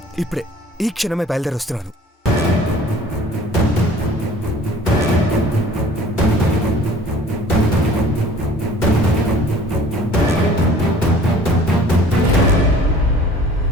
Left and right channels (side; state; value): both; normal; correlation 0.50